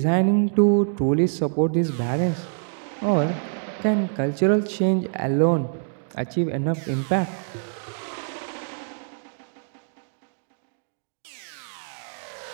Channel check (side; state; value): left; silent; digital silence